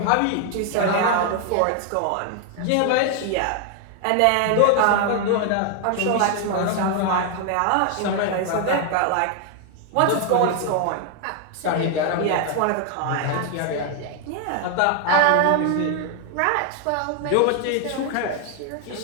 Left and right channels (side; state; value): both; different; correlation 0.00